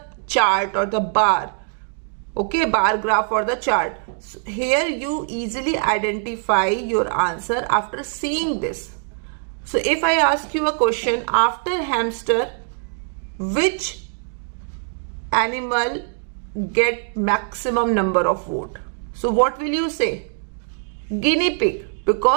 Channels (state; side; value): silent; left; 56 dB below the other